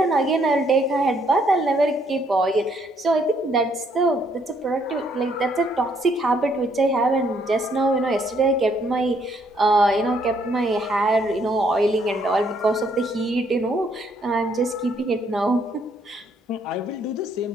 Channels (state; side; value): normal; both; correlation 0.69